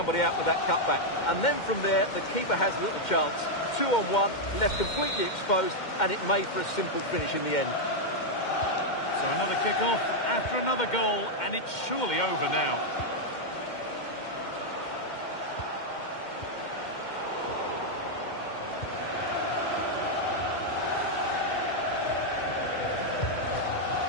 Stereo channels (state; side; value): late; right; 2.1 ms